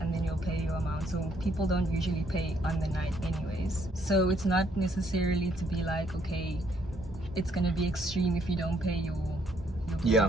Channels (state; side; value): normal; both; correlation 0.69